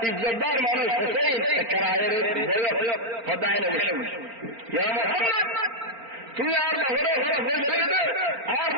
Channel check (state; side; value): late; left; 4.4 ms